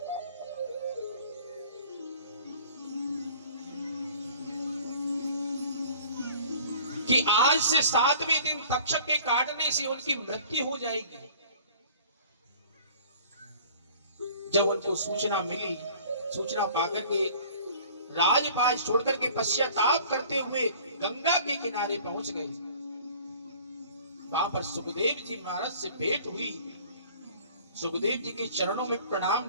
कि आज से 7वें दिन तक्षक के काटने से उनकी मृत्यु हो जाएगी। जब उनको सूचना मिली, सूचना पाकर के राजपाट छोड़कर के पश्चाताप करते हुए गंगा के किनारे पहुंच गए। वहां पर सुखदेव जी महाराज से भेंट हुई। सुखदेव जी के चरणों में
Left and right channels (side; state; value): both; inverted; correlation -0.48